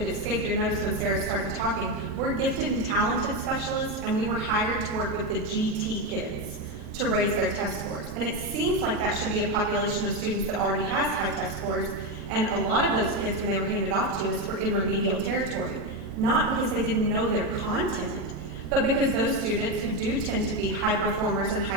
it escaped your notice when Sarah started talking, we're gifted and talented specialists, and we were hired to work with the GT kids to raise their test scores. And it seems like that should be a population of students that already has high test scores, and a lot of those kids, when they were handed off to us, were in remedial territory. Not because they didn't know their content, but because those students who do tend to be high performers and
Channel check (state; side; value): normal; both; correlation 0.11